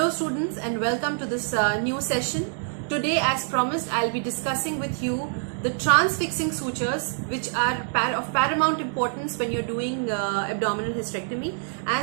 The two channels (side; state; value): left; silent; digital silence